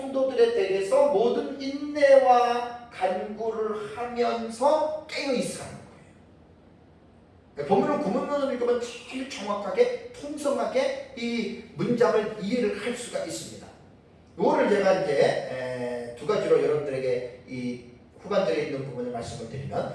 대해서 모든 인내와 간구를 하면서 깨어 있으라는 거예요. 본문을 구문론을 읽으면 제일 정확하게 통성하게 이 문장을 이해를 할 수가 있습니다. 이거를 제가 이제 두 가지로 여러분들에게 이 후반절에 있는 부분을 말씀을 드리면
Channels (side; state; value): both; identical; correlation 1.00